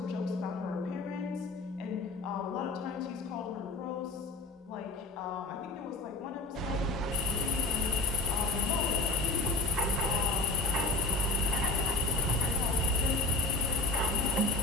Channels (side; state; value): right; quieter; 3.4 dB